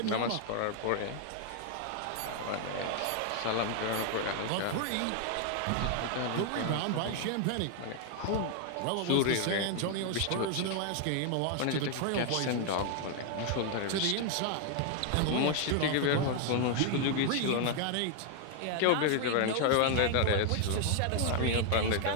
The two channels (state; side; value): different; both; correlation 0.00